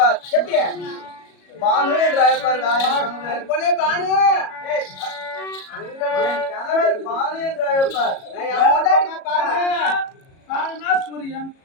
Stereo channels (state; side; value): late; right; 37 ms